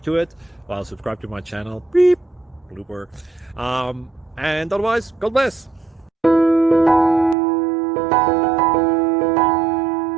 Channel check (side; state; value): left; drops out; at 7.4 s